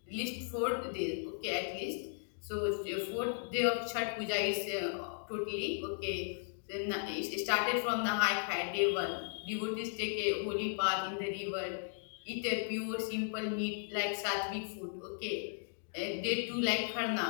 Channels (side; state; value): right; silent; digital silence